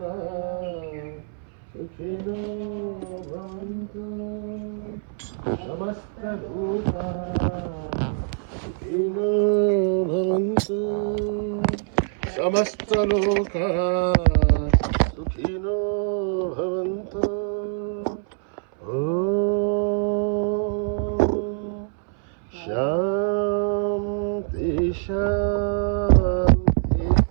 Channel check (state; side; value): silent; left; 61 dB below the other